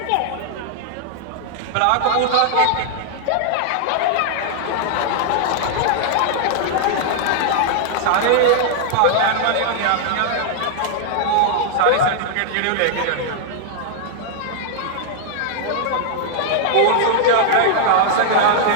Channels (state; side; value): different; both; correlation -0.01